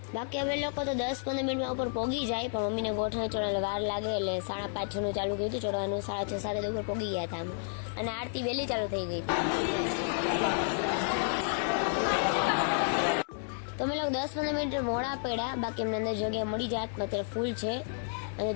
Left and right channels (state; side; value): silent; right; 57 dB below the other